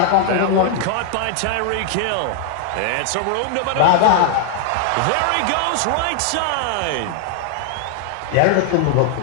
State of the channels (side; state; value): both; different; correlation 0.00